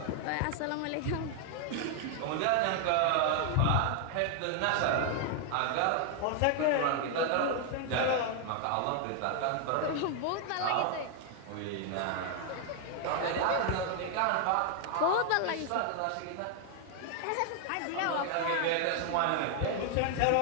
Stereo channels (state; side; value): different; both; correlation 0.00